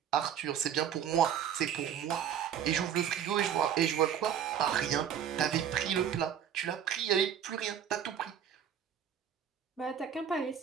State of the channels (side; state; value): left; quieter; 8.9 dB